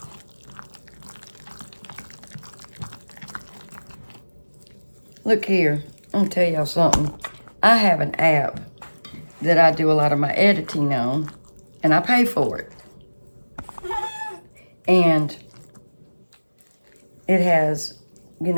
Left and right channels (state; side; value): inverted; both; correlation -1.00